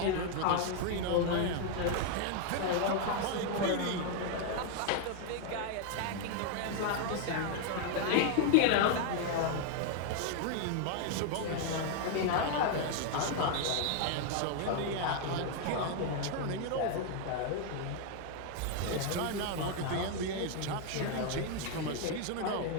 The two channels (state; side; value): different; both; correlation 0.00